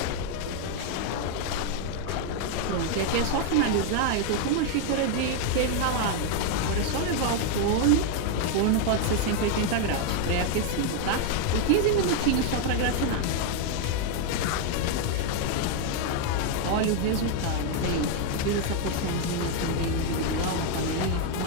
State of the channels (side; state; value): both; different; correlation 0.01